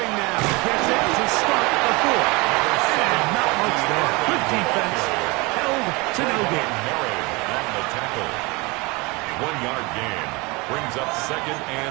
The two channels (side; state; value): left; quieter; 25.6 dB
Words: now gets it to start the 4th. And not much there. Good defense. Held to no gain. Murray on the tackle. 1-yard gain. Brings up 2nd